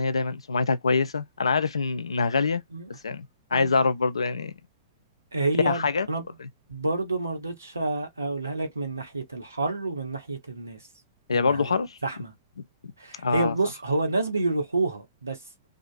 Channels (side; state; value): both; inverted; correlation -0.79